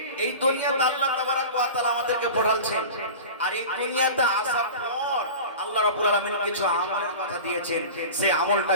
এই দুনিয়াতে আল্লাহ তাবারাক ওয়া তাআলা আমাদেরকে পাঠালছেন, আর এই দুনিয়াতে আসার পর আল্লাহ রাব্বুল আলামিন কিছু আমলের কথা দিয়েছেন, সেই আমলটা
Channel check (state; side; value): inverted; both; correlation -0.34